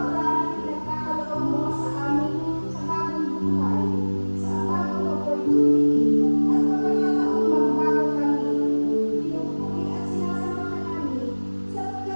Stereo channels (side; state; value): both; inverted; correlation -1.00